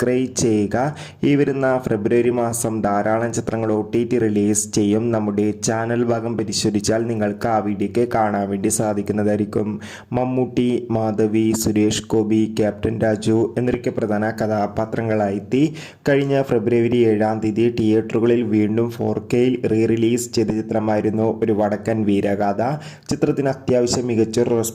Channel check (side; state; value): both; identical; correlation 1.00